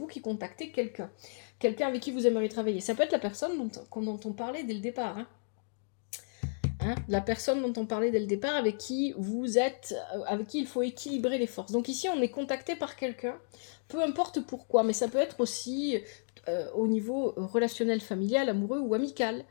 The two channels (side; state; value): right; silent; digital silence